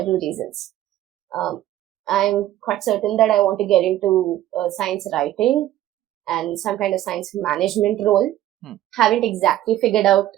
reasons. I'm quite certain that I want to get into science writing and some kind of science management role. Haven't exactly figured out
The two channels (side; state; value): left; quieter; 13.6 dB